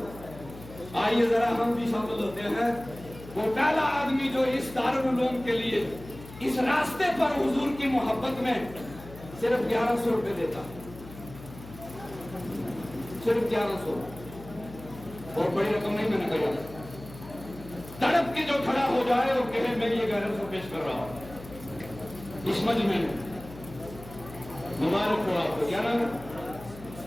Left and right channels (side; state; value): left; noise; hum, 16 dB below the sound